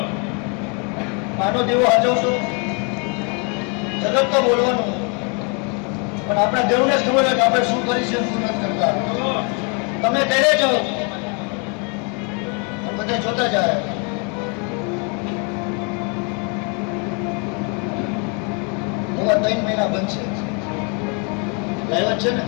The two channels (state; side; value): quieter; right; 35.2 dB